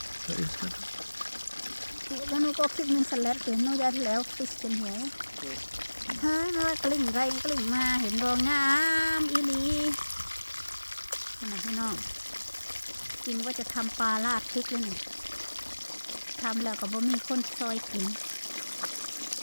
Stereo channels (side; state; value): both; inverted; correlation -1.00